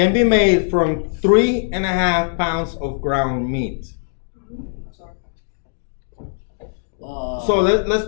be made from 3.5 pounds of ground meat? So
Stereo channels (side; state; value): right; silent; digital silence